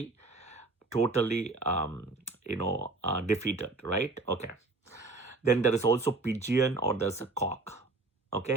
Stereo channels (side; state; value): left; quieter; 3.4 dB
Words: totally, defeated, right? Okay. Then there is also pigeon or there's a cock.